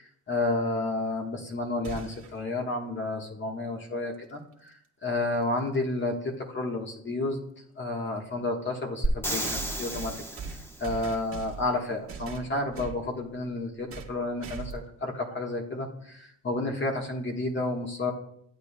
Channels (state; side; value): normal; both; correlation 0.27